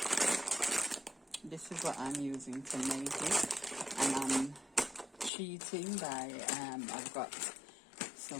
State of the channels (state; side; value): drops out; right; at 5.3 s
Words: This is what I'm using to make it, and I'm cheating by I've got